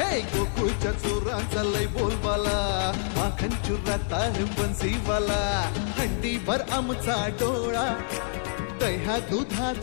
गोकुळच्या चोरांचा लय बोलबाला माखन चुरात आहे बन्सीवाला। हंडीभर आमचा डोळा दह्या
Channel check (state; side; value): silent; right; 60 dB below the other